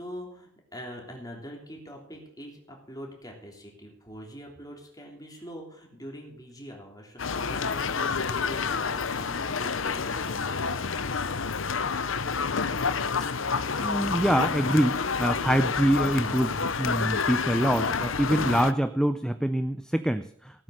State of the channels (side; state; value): both; normal; correlation 0.56